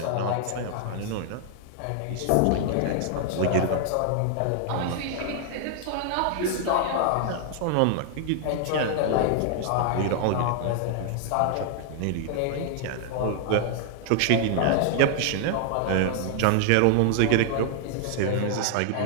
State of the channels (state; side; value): different; both; correlation 0.00